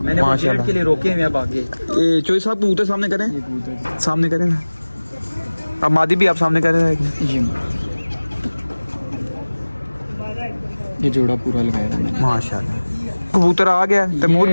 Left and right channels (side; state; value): both; inverted; correlation -1.00